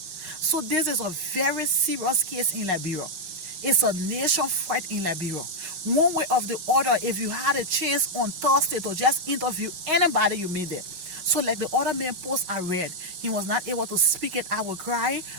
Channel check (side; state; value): left; late; 5.3 ms